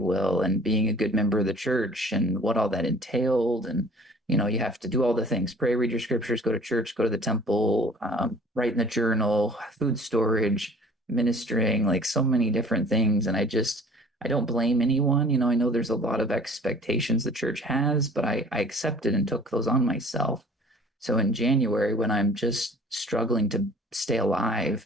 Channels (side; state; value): both; normal; correlation 0.50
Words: will, and being a good member of the church and what all that entailed. And, you have to do all the things: pray, read your scriptures, go to church, go to the temple, write in the journal, food storage, ministering, like so many different things. And I don't blame anyone. I know there's a lot of expectations the church has, but I accepted and took those on myself. So in January, when I'm just struggling to stay